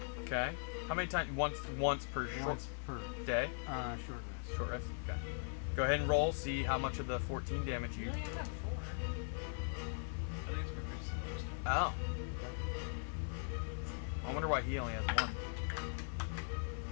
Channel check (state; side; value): silent; right; digital silence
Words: Okay. How many times? Once per once per day. short rest. Short rest. Okay. Go ahead and roll. See how much of the 14 damage you. Really, I have 4. I think it's reversed. Oh. I wonder why he only has one.